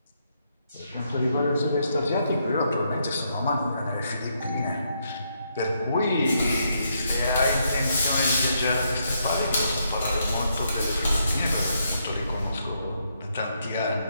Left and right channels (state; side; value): inverted; both; correlation -0.77